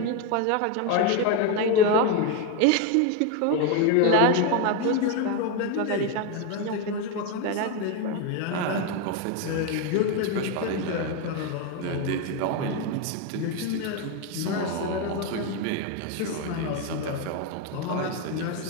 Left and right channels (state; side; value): different; both; correlation 0.02